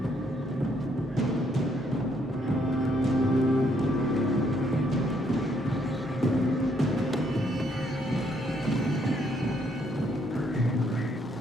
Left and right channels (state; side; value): normal; both; correlation 0.70